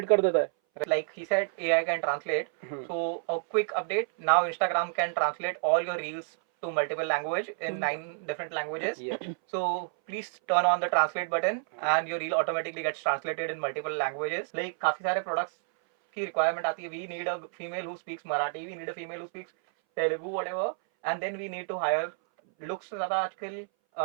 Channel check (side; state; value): left; silent; 58 dB below the other